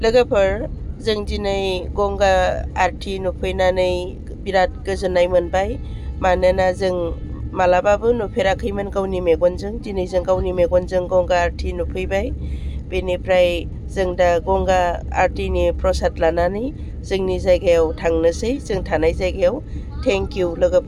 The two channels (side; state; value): both; identical; correlation 1.00